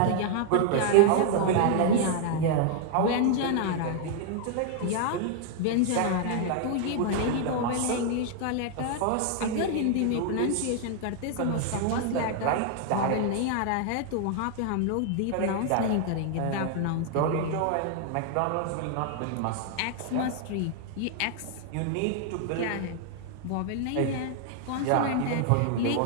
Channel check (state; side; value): different; both; correlation 0.00